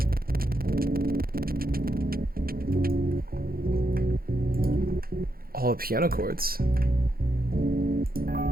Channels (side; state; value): left; late; 0.43 ms